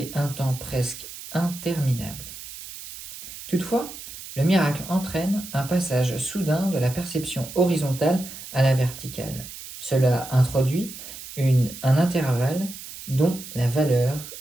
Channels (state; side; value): noise; right; hiss, 13 dB below the sound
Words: un temps presque interminable. Toutefois, le miracle entraîne un passage soudain de la perception horizontale à la verticale. Cela introduit un intervalle dont la valeur